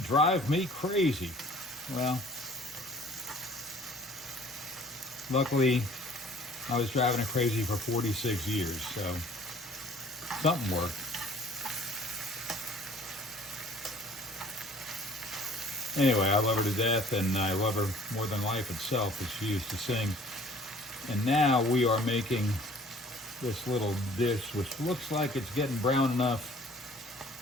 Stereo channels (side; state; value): both; normal; correlation 0.53